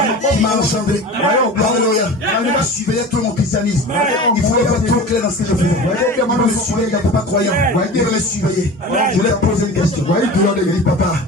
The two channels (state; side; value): normal; both; correlation 0.35